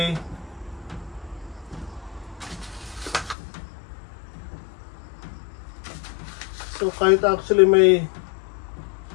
So kahit actually may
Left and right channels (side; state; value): right; drops out; at 3.4 s